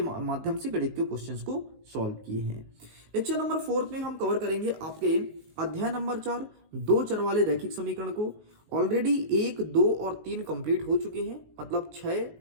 से गणित के क्वेश्चंस को सॉल्व किए हैं। लेक्चर नंबर 4 में हम कवर करेंगे आपके अध्याय नंबर 4 दो चर वाले रैखिक समीकरण को। ऑलरेडी 1, 2 और 3 कंप्लीट हो चुके हैं, मतलब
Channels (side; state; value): left; late; 19 ms